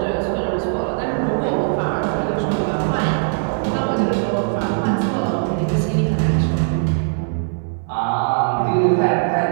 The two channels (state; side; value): silent; left; digital silence